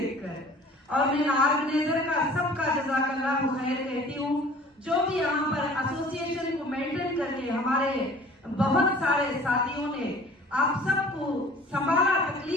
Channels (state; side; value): normal; both; correlation 0.48